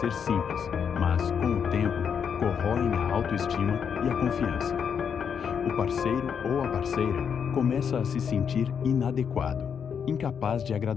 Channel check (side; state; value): right; quieter; 7.2 dB